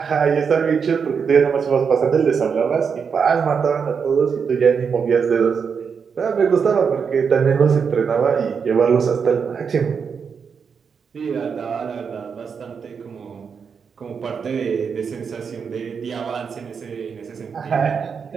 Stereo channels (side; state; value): left; quieter; 6.2 dB